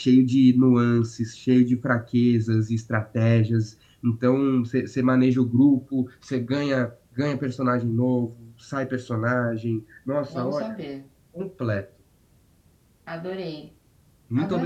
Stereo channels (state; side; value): identical; both; correlation 1.00